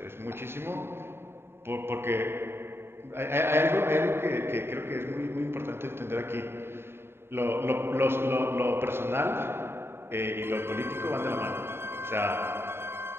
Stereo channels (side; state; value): left; late; 0.11 ms